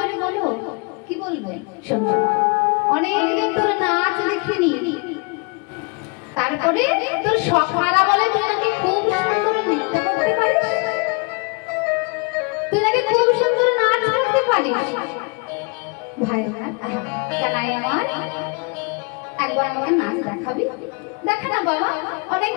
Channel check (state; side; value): quieter; right; 32.0 dB